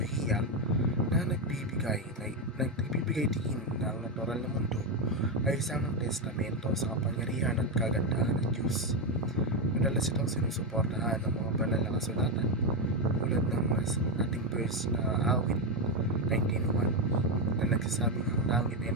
na nagbibigay diin na ang natural na mundo ay isang testamento sa kapangyarihan at kagandahan ng Diyos. Madalas itong sinusuportahan ng mga banal na kasulatan tulad ng ating verse na awit 19:1 na nagsasabing ang langit ay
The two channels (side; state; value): both; normal; correlation 0.08